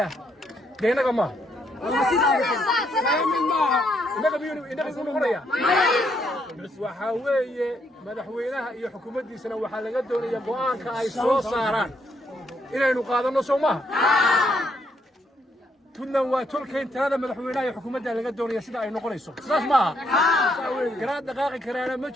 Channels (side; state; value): both; normal; correlation 0.74